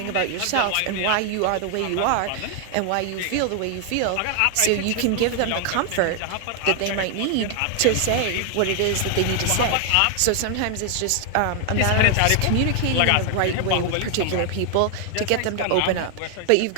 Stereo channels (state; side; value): different; both; correlation 0.00